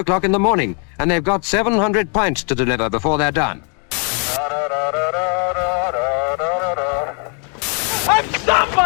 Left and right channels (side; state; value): right; quieter; 38.9 dB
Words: in the morning, and they've got 700 pints to deliver before they're done. I'm